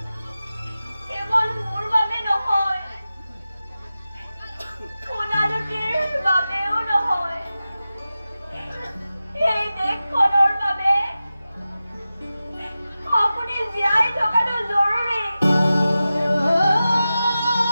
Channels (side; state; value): both; inverted; correlation -0.94